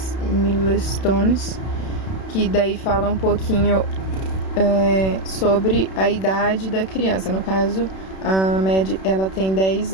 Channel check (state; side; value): late; right; 31 ms